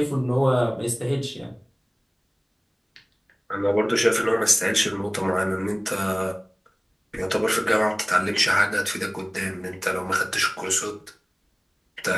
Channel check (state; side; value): identical; both; correlation 1.00